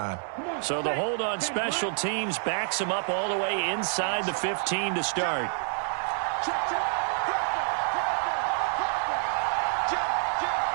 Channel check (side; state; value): left; silent; 59 dB below the other